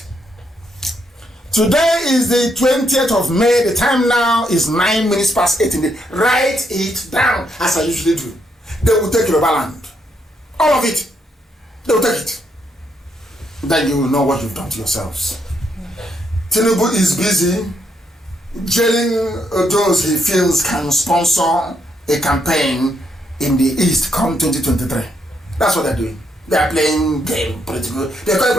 Today is the 20th of May. The time now is 9 minutes past 8 in the. Write it down as I usually do. They will take Yoruba land. All of it. They will take it. Then you will know what you've done to yourselves. Tinubu is busy jailing those he feels can sponsor a campaign in the East come 2023. That's what they're doing. They are playing game, political. They call it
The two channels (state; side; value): normal; both; correlation 0.77